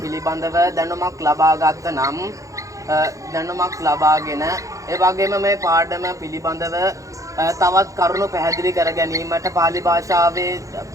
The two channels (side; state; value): left; late; 0.16 ms